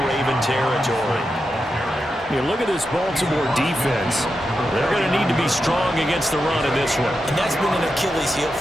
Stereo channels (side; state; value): both; normal; correlation 0.88